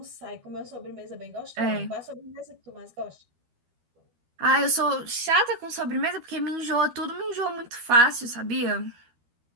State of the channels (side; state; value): left; late; 13 ms